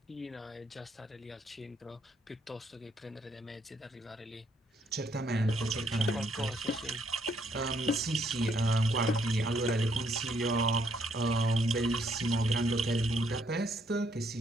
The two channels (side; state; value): both; normal; correlation 0.71